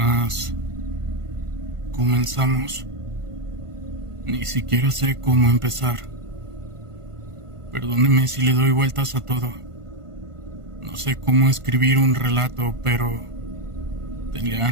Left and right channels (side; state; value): left; late; 1.5 ms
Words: comenzamos. Ni siquiera sé cómo empezar. Perdóneme si le doy vueltas a todo. No sé cómo escribir un relato, pero tenía